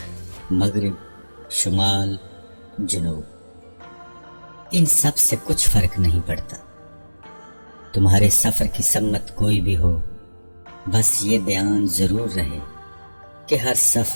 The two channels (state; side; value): inverted; both; correlation -1.00